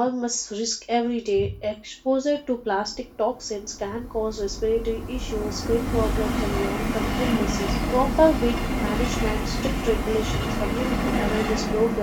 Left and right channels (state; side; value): identical; both; correlation 1.00